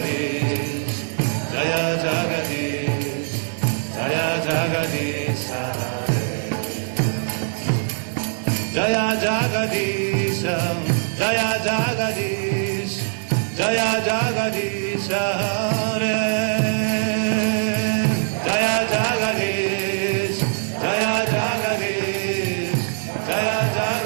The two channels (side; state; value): left; silent; digital silence